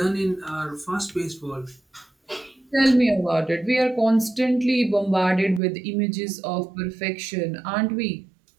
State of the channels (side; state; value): left; drops out; at 5.6 s